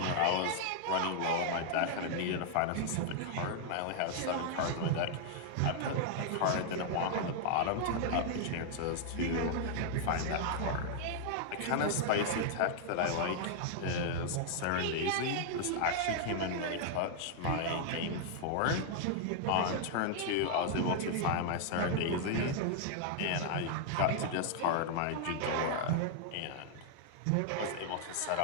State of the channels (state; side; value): different; both; correlation -0.01